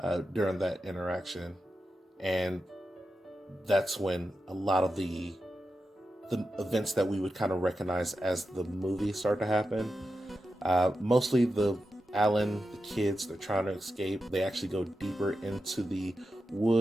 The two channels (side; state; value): both; normal; correlation 0.90